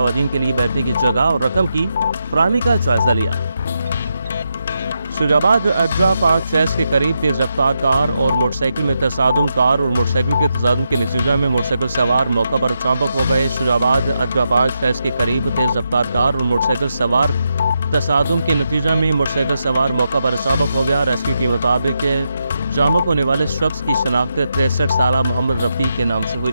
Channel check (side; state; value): both; inverted; correlation -0.85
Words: के लिए बैठने की जगह और रकम की फराहमी का जायजा लिया। शुजाबाद अड्डा पार्क फैस के करीब तेज रफ्तार कार और मोटरसाइकिल में तसादुम। कार और मोटरसाइकिल के तसादुम के नतीजे में मोटरसाइकिल सवार मौका पर चांपक हो गए। शुजाबाद अड्डा पार्क फैस के करीब तेज रफ्तार कार और मोटरसाइकिल सवार तसादुम के नतीजे में मोटरसाइकिल सवार मौका पर चांपक हो गया। रेस्क्यू के मुताबिक चांपक होने वाले शख्स की शनाख्त 63 साल मोहम्मद रफ़ी के नाम से